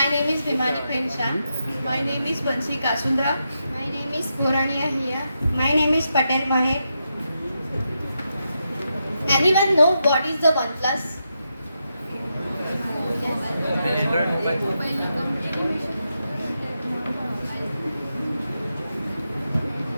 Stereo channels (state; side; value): inverted; both; correlation -0.85